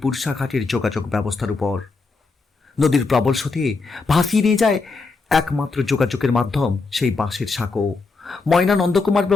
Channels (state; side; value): quieter; right; 4.1 dB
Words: পুরসাঘাটের যোগাযোগ ব্যবস্থার উপর। নদীর প্রবল স্রোতে ভাসিয়ে নিয়ে যায় একমাত্র যোগাযোগের মাধ্যম সেই বাঁশের সাঁকো। ময়না নন্দকুমার